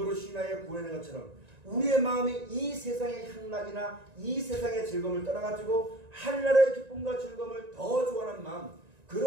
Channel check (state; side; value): late; left; 1.9 ms